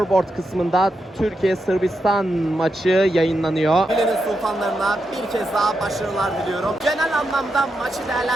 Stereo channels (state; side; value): normal; both; correlation 0.85